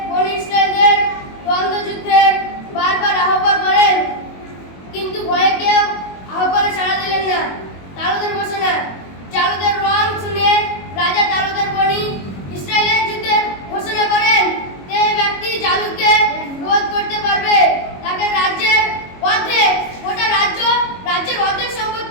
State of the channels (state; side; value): late; right; 22 ms